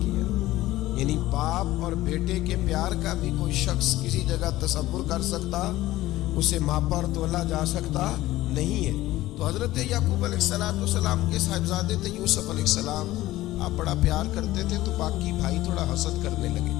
یعنی باپ اور بیٹے کے پیار کا بھی کوئی شخص کسی جگہ تصور کر سکتا، اسے ماپا اور تولا جا سکتا نہیں ہے۔ تو حضرت یعقوب علیہ السلام کے صاحبزادے تھے یوسف علیہ السلام، آپ بڑا پیار کرتے تھے تو باقی بھائی تھوڑا حسد کرنے لگے،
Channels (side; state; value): right; quieter; 16.4 dB